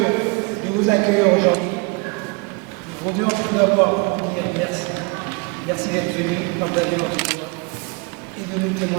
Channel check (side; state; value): left; quieter; 30.2 dB